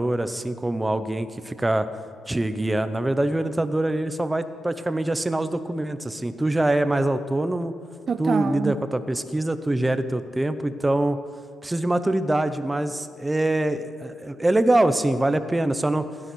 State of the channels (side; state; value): both; normal; correlation 0.96